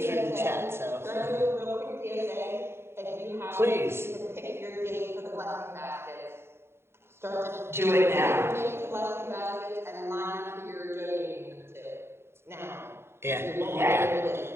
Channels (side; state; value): left; late; 0.12 ms